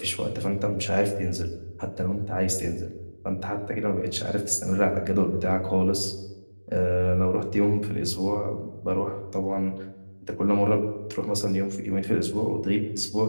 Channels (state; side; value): inverted; both; correlation -1.00